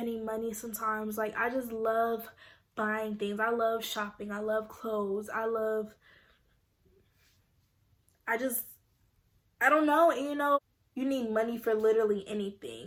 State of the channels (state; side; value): identical; both; correlation 1.00